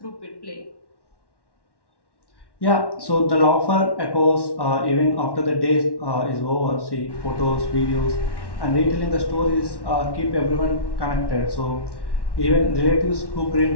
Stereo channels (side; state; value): right; late; 1.1 ms